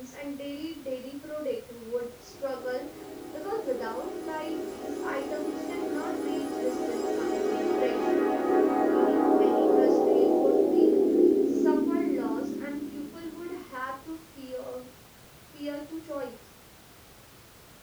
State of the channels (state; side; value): identical; both; correlation 1.00